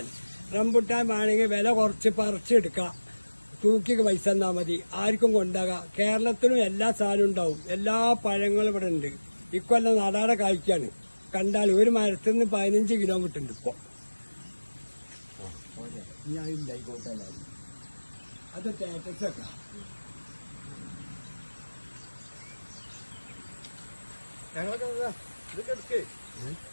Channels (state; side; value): inverted; both; correlation -1.00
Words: റംബുട്ടാൻ വേണമെങ്കിൽ വില കുറച്ച് പറിച്ചെടുക്കാം. തൂക്കി പൈസ തന്നാ മതി. ആർക്കും കൊണ്ടാകാം. കേരളത്തിലും എല്ലാ സാധനവും ഉണ്ടാവും. എല്ലാ പഴങ്ങളും ഇവിടെ ഉണ്ട്. ഇക്കൊല്ലം നാടാടെ കായ്ക്കാണ്. കണ്ടാൽ ഒരു മരത്തിൽ നിന്ന് 15 കിലോമീറ്റർ ഉണ്ട് ഇപ്പൊ. അത് സ്റ്റാറ്റസ് ഒക്കെ